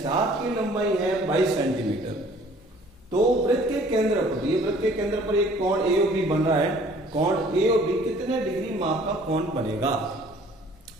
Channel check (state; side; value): normal; both; correlation 0.54